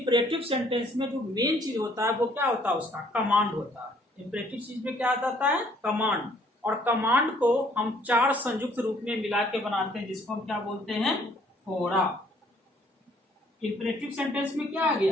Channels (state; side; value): normal; both; correlation 0.62